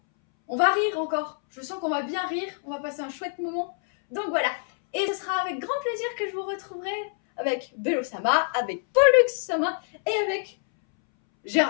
On va rire encore. Je sens qu'on va bien rire. On va passer un chouette moment. Donc voilà. Et ce sera avec grand plaisir que je vous retrouverai avec Bello Sama, avec Pollux Sama et avec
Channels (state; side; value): silent; right; 61 dB below the other